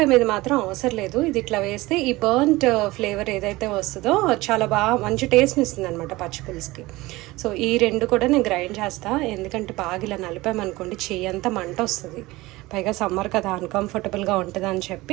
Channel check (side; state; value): left; quieter; 20.0 dB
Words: మీద మాత్రం అవసరం లేదు. ఇది ఇట్లా వేస్తే ఈ బర్న్ట్ ఫ్లేవర్ ఏదైతే వస్తుందో చాలా బాగా మంచి టేస్ట్ని ఇస్తుంది అనమాట పచ్చి పులుసుకి. సో ఈ రెండు కూడా నేను గ్రైండ్ చేస్తాను. ఎందుకంటే బాగా ఇలా నలిపామనుకోండి చెయ్యి అంతా మంట వస్తుంది. పైగా సమ్మర్ కదా, అన్కంఫర్టబుల్గా ఉంటుంది అని